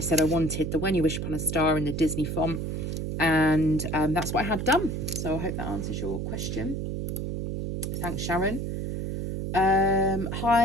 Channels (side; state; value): right; noise; hum, 3 dB below the sound